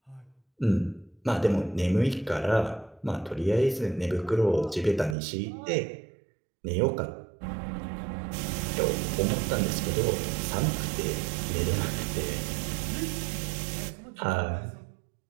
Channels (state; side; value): drops out; left; at 5.2 s